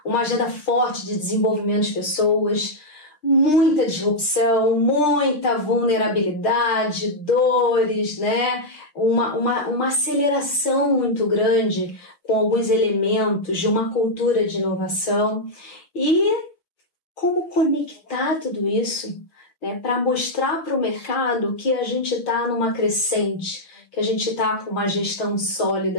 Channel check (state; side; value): late; right; 6.2 ms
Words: uma agenda forte de desenvolvimento de pessoas, muita disrupção, muita vulnerabilidade, dores, né? Uma aceleração muito grande com alguns elementos de uma cultura de inovação. E como conectar tudo isso, né, para mostrar para o mercado que a gente está numa crescente, que a gente está com uma gestão